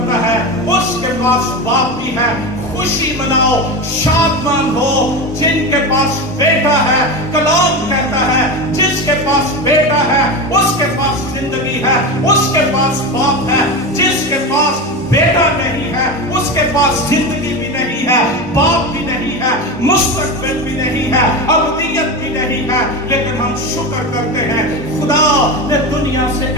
ہے اس کے پاس باپ بھی ہے. خوشی مناؤ، شادمان ہو جن کے پاس بیٹا ہے. کلام کہتا ہے جس کے پاس بیٹا ہے اس کے پاس زندگی ہے، اس کے پاس باپ ہے. جس کے پاس بیٹا نہیں ہے اس کے پاس زندگی بھی نہیں ہے، باپ بھی نہیں ہے، مستقبل بھی نہیں ہے، ابدیت بھی نہیں ہے. لیکن ہم شکر کرتے ہیں خدا نے دنیا سے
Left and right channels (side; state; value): both; normal; correlation 0.22